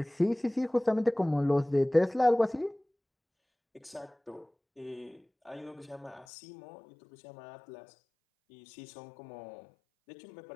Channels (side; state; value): right; drops out; at 6.2 s